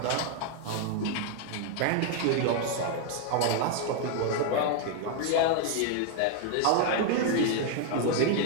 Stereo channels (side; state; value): both; different; correlation 0.00